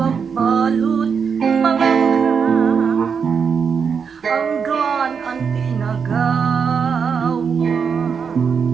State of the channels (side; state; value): left; quieter; 6.3 dB